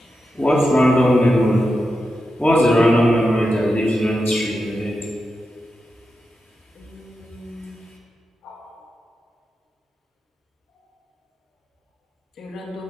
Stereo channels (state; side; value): normal; both; correlation 0.89